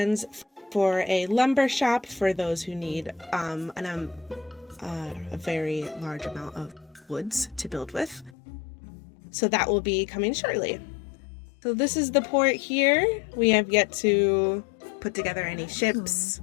for a lumber shop for those who need a very large amount of woods to build with. So that will be coming shortly. So this is the port here. We have yet to put together any ships,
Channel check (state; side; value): drops out; right; at 8.3 s